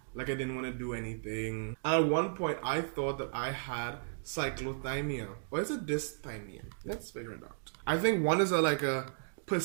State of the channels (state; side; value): silent; left; digital silence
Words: like I didn't want to do anything. And at one point, I thought that I had cyclothymia. Or is it dysthymia? Let's figure it out. I think one is like a